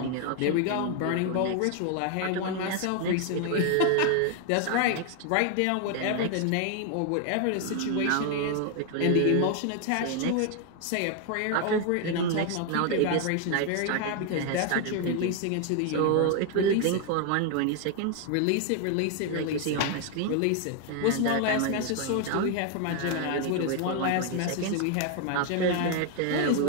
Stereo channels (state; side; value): different; both; correlation 0.00